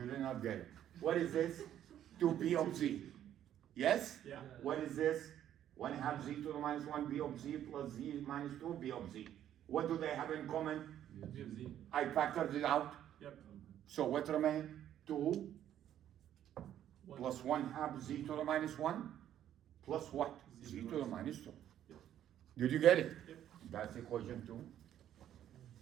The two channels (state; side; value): quieter; left; 11.0 dB